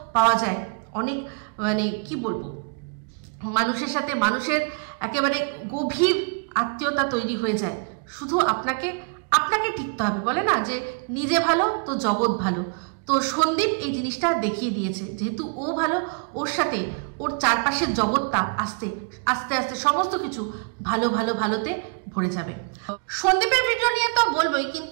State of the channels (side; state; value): left; quieter; 35.9 dB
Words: পাওয়া যায়, অনেক মানে কি বলবো, মানুষের সাথে মানুষের একেবারে গভীর আত্মীয়তা তৈরি হয়ে যায়। শুধু আপনাকে টিকতে হবে, বলে না যে নিজে ভালো তো জগৎ ভালো। তো সন্দীপ এই জিনিসটা দেখিয়ে দিয়েছে, যেহেতু ও ভালো, ওর সাথে ওর চারপাশের জগৎটা আস্তে আস্তে আস্তে সমস্ত কিছু ভালোতে ভরে যাবে। সন্দীপের ভিডিও নিয়ে তো বলবোই,